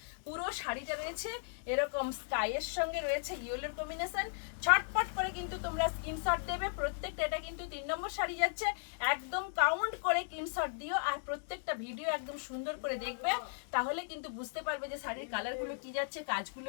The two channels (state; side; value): silent; right; digital silence